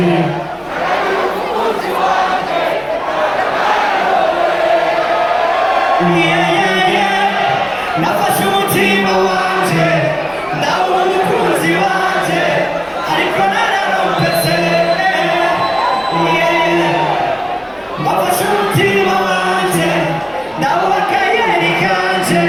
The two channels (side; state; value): both; identical; correlation 1.00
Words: nafashe umutima wanje ndabona umukunzi wanje ariko nararompese nafashe umutima wanje ndabona akayeri kanje